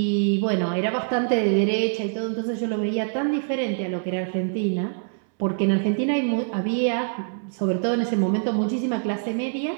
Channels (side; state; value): left; silent; 62 dB below the other